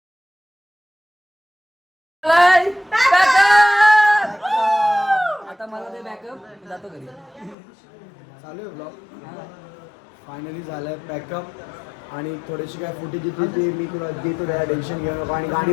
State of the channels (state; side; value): drops out; right; at 7.6 s